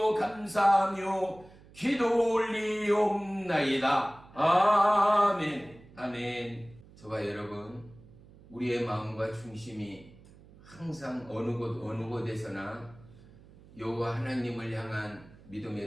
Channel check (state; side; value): noise; right; hum, 23 dB below the sound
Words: 감사하며 기도 올리옵나이다. 아멘. 아멘. 저와 여러분, 우리의 마음과 중심이 항상 어느 곳에서나 여호와 하나님을 향한